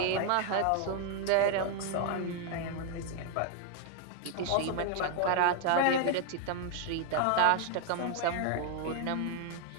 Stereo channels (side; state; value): both; different; correlation 0.00